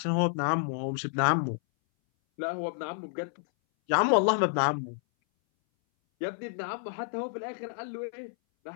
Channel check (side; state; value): right; silent; 58 dB below the other